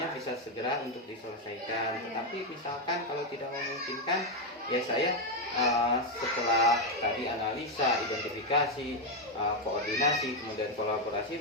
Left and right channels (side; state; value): both; normal; correlation 0.04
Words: bisa segera untuk diselesaikan. Tetapi misalkan kalau tidak memungkinkan, ya saya setelah tadi analisa, identifikasi, koordinasi, kemudian